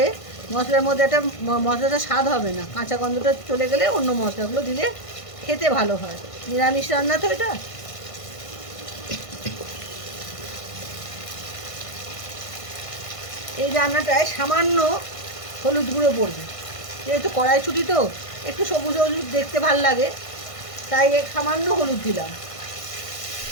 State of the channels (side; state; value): right; late; 1.5 ms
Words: মশলার মধ্যে একটা মশলাটা স্বাদ হবে না। কাঁচা গন্ধটা চলে গেলে অন্য মশলাগুলো দিলে খেতে ভালো হয়। নিরামিষ রান্না তো এটা। এই রান্নাটায় সামান্য হলুদ গুঁড়ো পড়বে, যেহেতু কড়াইশুঁটি তো একটু সবুজ হলুদ দেখতে ভাল লাগে, তাই সামান্য হলুদ দিলাম।